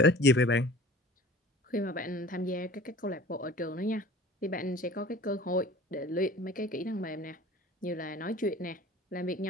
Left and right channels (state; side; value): normal; both; correlation 0.44